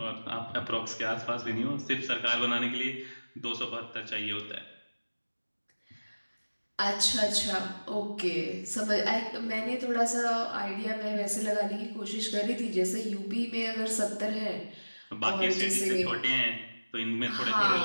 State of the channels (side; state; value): both; inverted; correlation -1.00